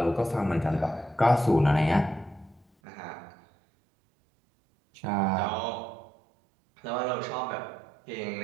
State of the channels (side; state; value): left; drops out; at 2.7 s